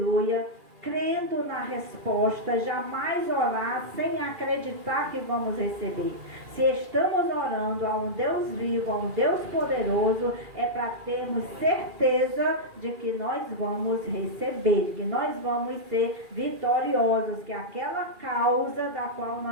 crendo na resposta, jamais orar sem acreditar que vamos receber. Se estamos orando a um Deus vivo, a um Deus poderoso, é para termos certeza de que nós vamos receber, de que nós vamos ser vitoriosos, que aquela causa da qual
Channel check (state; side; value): late; left; 2.4 ms